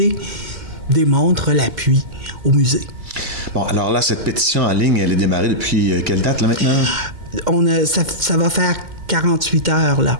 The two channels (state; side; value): late; left; 2.1 ms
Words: démontre l'appui au musée. Bon, alors là, cette pétition en ligne, elle est démarrée depuis quelle date, là? Ça va faire 48 heures, là,